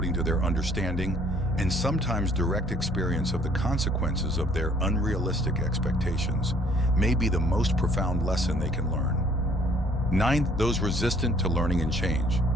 to their understanding and sometimes direct experience of the consequences of their unrealistic expectations may be the most profound lesson they can learn. Ninth, those resistant to learning and change.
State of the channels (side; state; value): both; normal; correlation 0.60